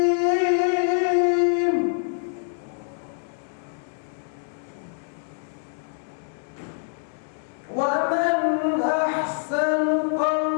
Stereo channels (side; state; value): right; silent; digital silence